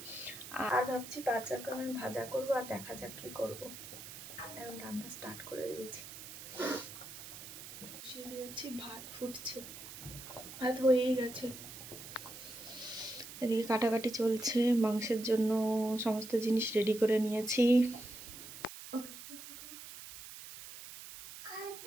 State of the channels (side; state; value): right; noise; hiss, 12 dB below the sound